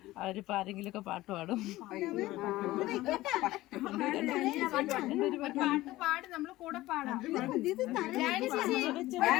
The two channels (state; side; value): quieter; right; 17.3 dB